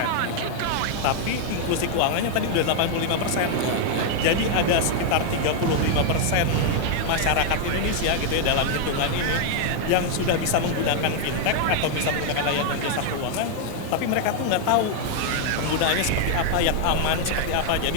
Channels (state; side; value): different; both; correlation 0.00